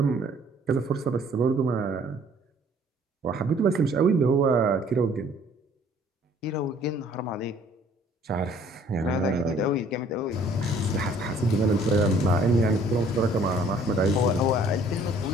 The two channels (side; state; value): both; normal; correlation 0.57